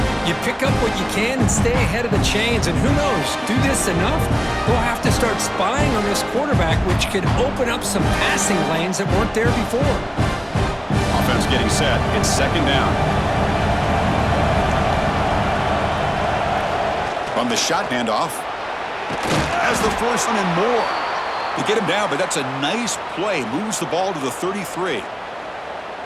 You pick up what you can and stay ahead of the chains. And who knows, do this enough, they'll have to start spying on this quarterback, which could open up some passing lanes that weren't there before. Offense getting set. It's second down. From the shot handoff. Has the first one and more. They get him down, but that's a nice play. Moves the ball to the 33.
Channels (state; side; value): identical; both; correlation 1.00